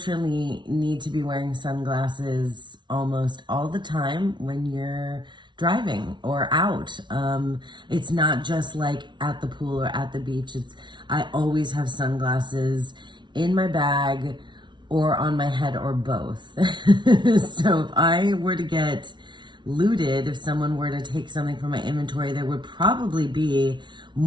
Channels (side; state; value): left; late; 0.23 ms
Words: need to be wearing sunglasses almost all the time when you're driving or out. It's not just like at the pool or at the beach. I always have sunglasses in my bag or on my head or both. So if I were to get looted, if someone were to take something from my inventory, there would probably be